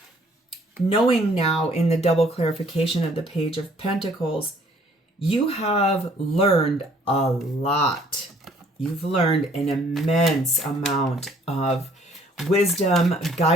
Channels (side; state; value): both; normal; correlation 0.60